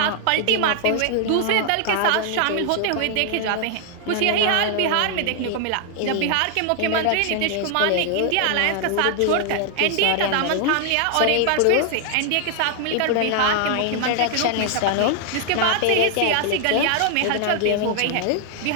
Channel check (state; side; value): different; both; correlation 0.00